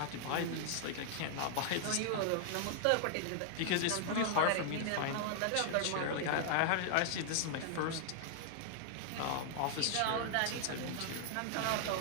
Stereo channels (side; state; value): both; different; correlation 0.00